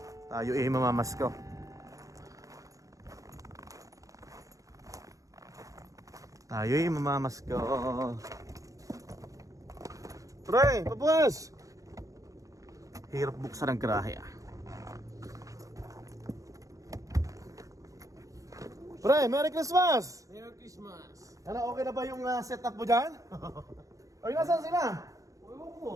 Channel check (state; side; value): late; left; 0.16 ms